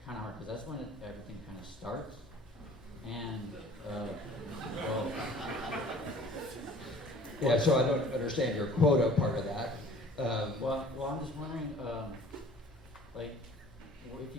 kind of hard because that's when everything kind of starts. And, yeah, so I don't understand your quota part of that. Well, I'm just wondering, if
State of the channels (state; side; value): normal; both; correlation 0.50